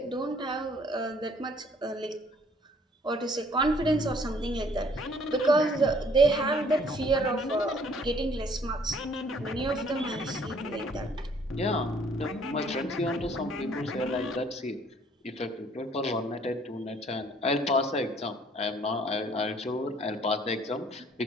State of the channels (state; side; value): normal; both; correlation 0.60